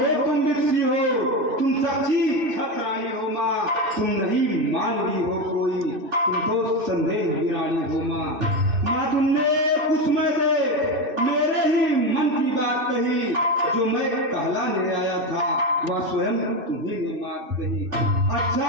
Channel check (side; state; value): left; late; 2.5 ms